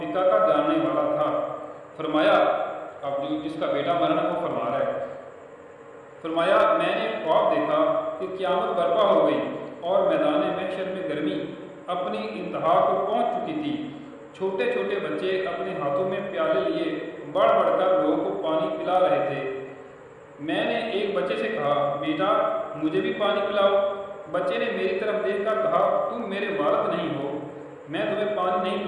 کا جاننے والا تھا۔ فرمایا، اب جو جس کا بیٹا مرنا وہ فرما رہا ہے، فرمایا میں نے خواب دیکھا کہ قیامت برپا ہو گئی اور میدان محشر میں گرمی اپنی انتہا کو پہنچ چکی تھی۔ چھوٹے چھوٹے بچے اپنے ہاتھوں میں پیالے لیے بڑھ بڑھ کر لوگوں کو پانی پلا رہے تھے۔ میں نے ایک بچے سے کہا، بیٹا مجھے بھی پانی پلاؤ۔ بچے نے میری طرف دیکھ کر کہا، تم میرے والد نہیں ہو، میں تمہیں پانی نہیں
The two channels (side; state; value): both; identical; correlation 1.00